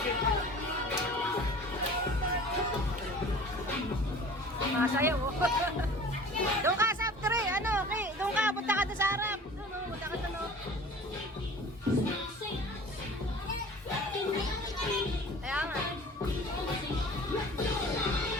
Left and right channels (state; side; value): normal; both; correlation 0.43